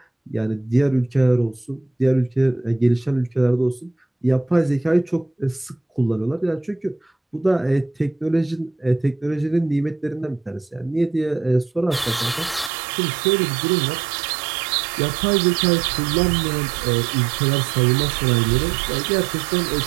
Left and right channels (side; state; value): left; drops out; at 12.7 s